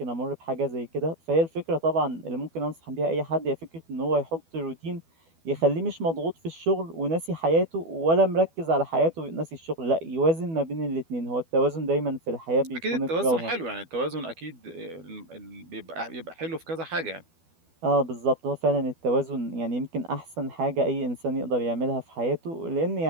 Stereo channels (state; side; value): late; left; 12 ms